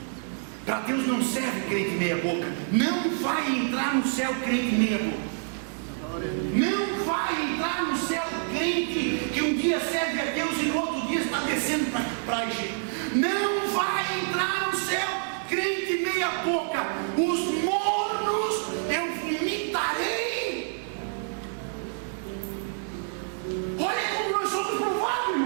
Para Deus não serve crente meia boca. Não vai entrar no céu crente meia boca. Não vai entrar no céu crente que um dia serve a Deus e no outro dia está descendo para Egito. Não vai entrar no céu crente meia boca. Os mornos eu vomitarei. Olha como nós somos provados,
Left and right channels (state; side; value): silent; left; 60 dB below the other